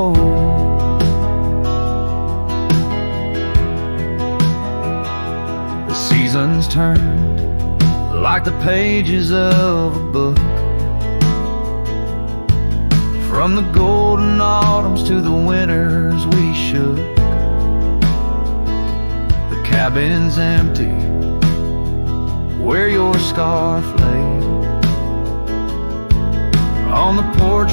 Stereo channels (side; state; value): both; inverted; correlation -1.00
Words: The seasons turned like the pages of a book, from the golden autumns to the winters we shook. The cabin's empty where your scarf lay, on the